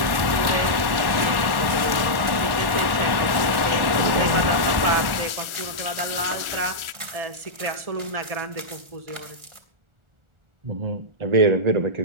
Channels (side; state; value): left; late; 1.4 ms